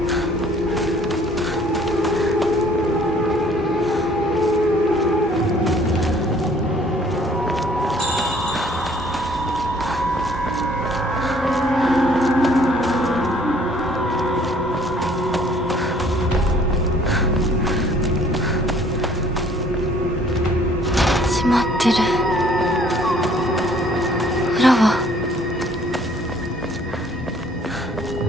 閉まってる。裏は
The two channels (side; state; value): both; normal; correlation 0.58